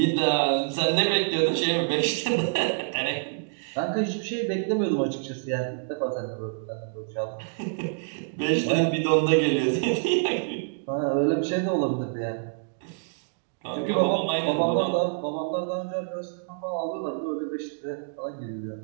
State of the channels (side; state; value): left; silent; digital silence